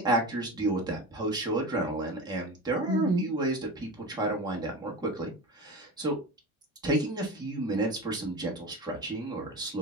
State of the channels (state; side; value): normal; both; correlation 0.28